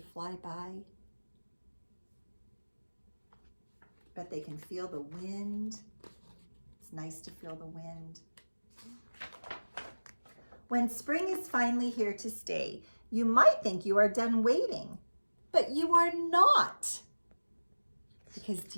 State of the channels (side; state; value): both; inverted; correlation -1.00